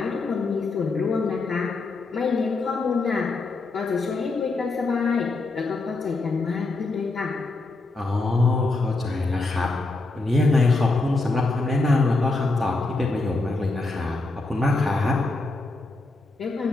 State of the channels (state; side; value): quieter; right; 3.3 dB